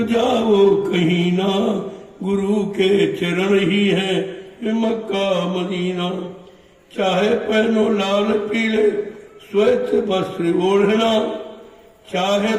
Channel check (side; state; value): both; identical; correlation 1.00